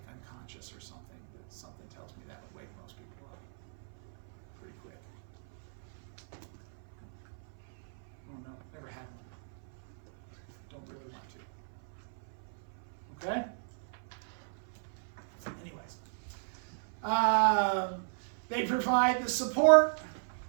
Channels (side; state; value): left; silent; 54 dB below the other